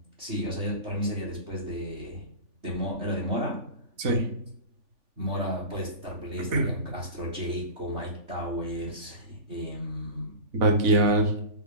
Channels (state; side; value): late; left; 3.5 ms